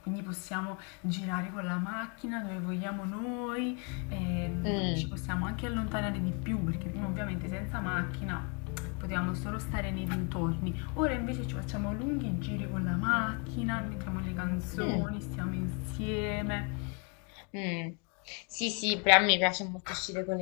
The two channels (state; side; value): quieter; right; 35.3 dB